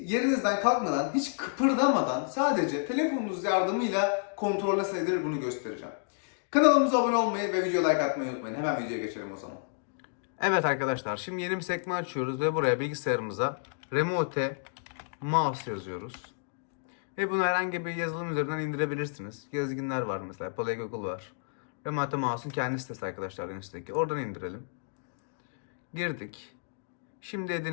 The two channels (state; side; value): silent; right; digital silence